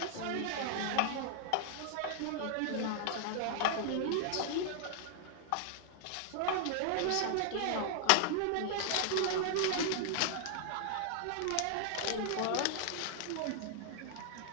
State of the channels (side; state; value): both; different; correlation -0.01